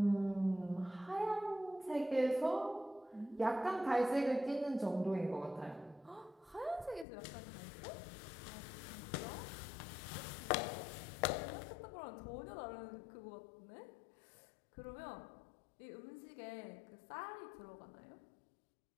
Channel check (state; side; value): drops out; right; at 7.1 s